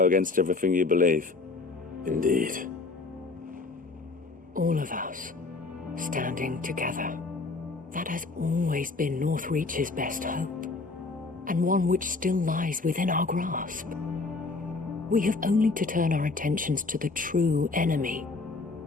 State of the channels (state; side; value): quieter; right; 3.7 dB